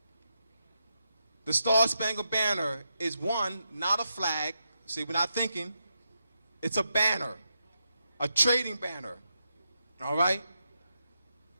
The Star-Spangled Banner is one, not a flag. See, we're not thinking. It's a banner, a trading banner. All right?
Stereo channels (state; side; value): inverted; both; correlation -0.84